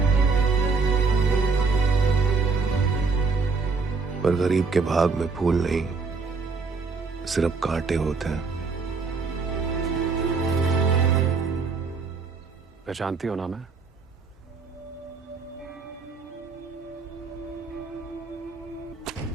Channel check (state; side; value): quieter; left; 4.5 dB